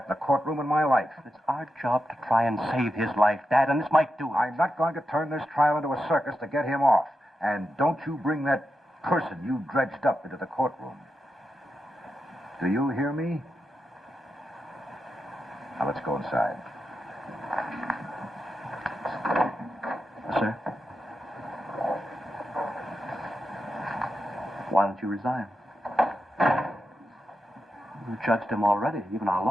in a courtroom in my life. It's our job to try and save his life, Dad, and this might do it. I'm not going to turn this trial into a circus to get him off. And don't you bring that person you dredged up into the courtroom. Do you hear me? Now, let's go inside. Sir? Why don't you resign? You judged him already. Even our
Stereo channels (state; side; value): normal; both; correlation 0.87